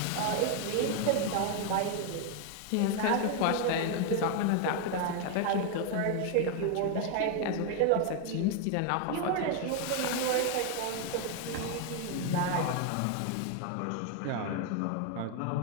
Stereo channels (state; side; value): different; both; correlation 0.01